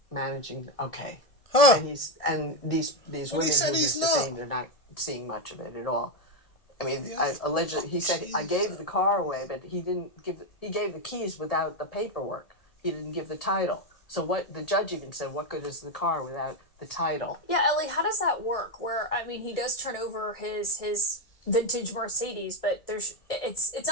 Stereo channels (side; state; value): right; late; 1.8 ms